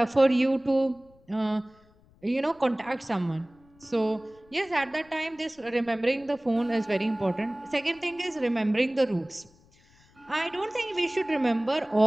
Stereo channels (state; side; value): noise; left; rumble, 29 dB below the sound